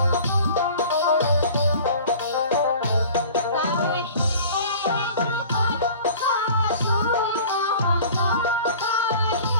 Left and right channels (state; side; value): inverted; both; correlation -0.44